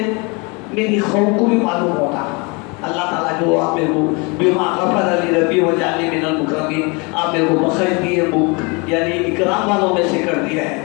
میری قوم کو بھی معلوم ہوتا۔ اللہ تعالیٰ جو آپ میرے کو بما غفر علی ربی و جعلنی من المکرمین، آپ میرے کو بخش دیے، یعنی اکرام والوں میں سے کر دیا ہے،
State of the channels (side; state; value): right; quieter; 29.5 dB